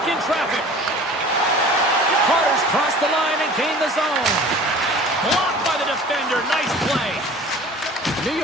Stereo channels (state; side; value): normal; both; correlation 0.44